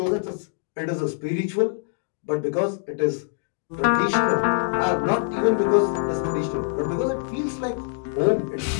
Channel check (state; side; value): silent; right; 61 dB below the other